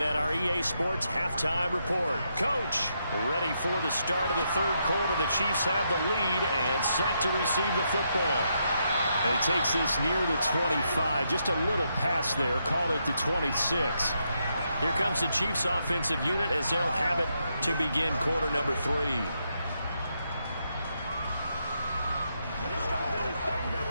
at our EA Sports Halftime Report. Coach, ready for the start of the third quarter. The Chiefs have the lead and set to receive the football. And he takes this near the 25, just a little pass there, called it the 26. Here comes the Chiefs offensive unit as they'll have it to begin quarter number 3.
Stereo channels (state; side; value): inverted; both; correlation -0.80